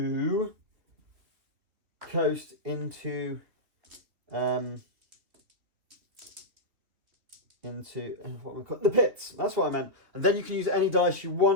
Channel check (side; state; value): left; late; 3.3 ms